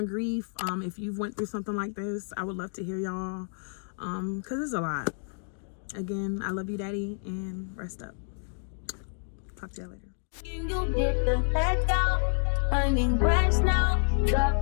grief. If you've went through something like this, I would love to hear y'all. Cause it's a lot. Again, I love you, Daddy, and rest up. Talk to y'all later. You get the heck out. I need rest now. Got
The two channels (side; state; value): right; silent; digital silence